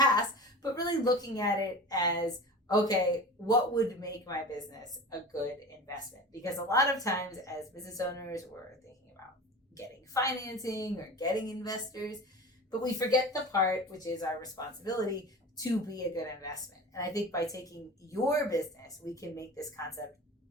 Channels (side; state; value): both; normal; correlation 0.34